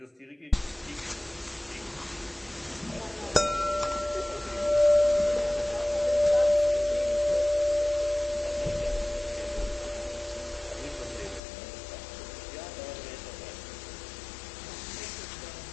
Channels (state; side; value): drops out; right; at 11.4 s